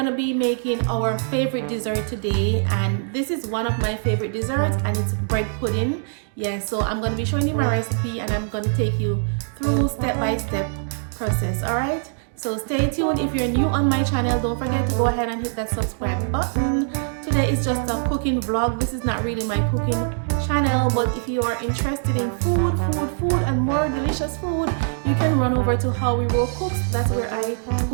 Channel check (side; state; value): left; silent; digital silence